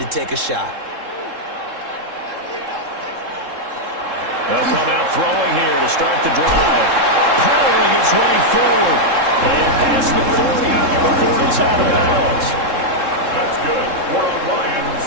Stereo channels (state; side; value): late; left; 3.7 ms